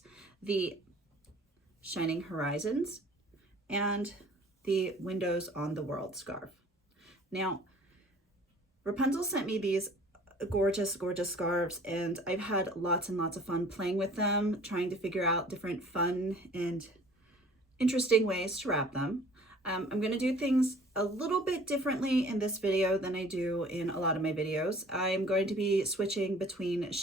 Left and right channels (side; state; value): both; normal; correlation 0.50